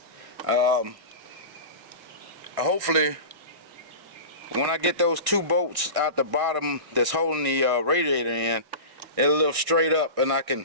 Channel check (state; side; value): late; left; 1.6 ms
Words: Hopefully, when I get those 2 bolts out the bottom that's holding the radiator in, it'll lift straight up and I